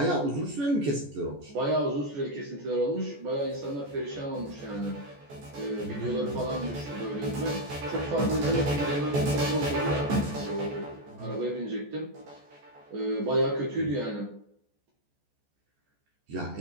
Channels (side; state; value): left; late; 14 ms